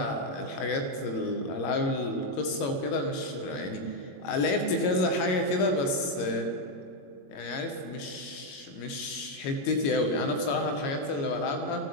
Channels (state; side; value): late; right; 22 ms